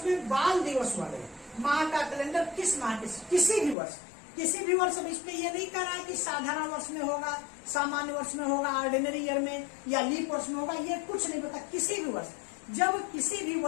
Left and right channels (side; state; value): right; drops out; at 3.8 s